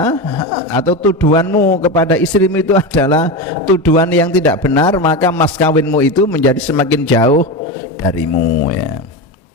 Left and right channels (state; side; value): normal; both; correlation 0.19